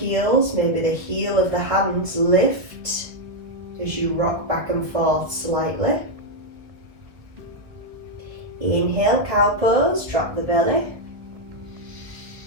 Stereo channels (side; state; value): left; late; 1.9 ms